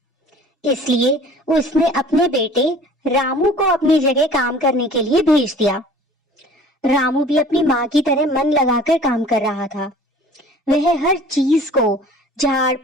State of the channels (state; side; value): normal; both; correlation 0.47